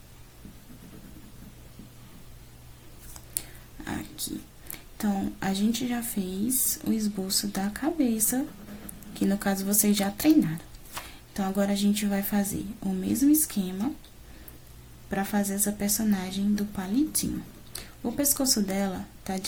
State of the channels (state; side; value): identical; both; correlation 1.00